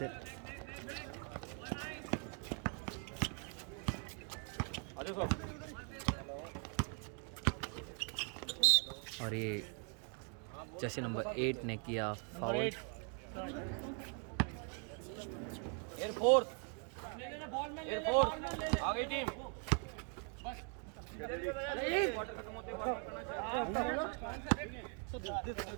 और ये जर्सी नंबर 8 ने किया फाउल। आगे टीम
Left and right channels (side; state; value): left; quieter; 38.5 dB